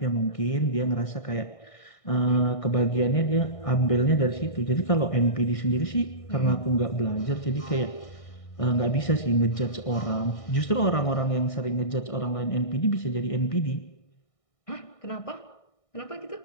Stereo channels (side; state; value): right; late; 1.6 ms